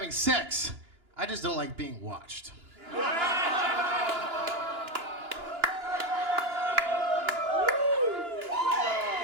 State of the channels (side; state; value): left; late; 2.9 ms